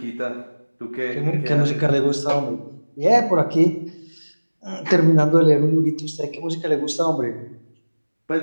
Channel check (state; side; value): inverted; both; correlation -1.00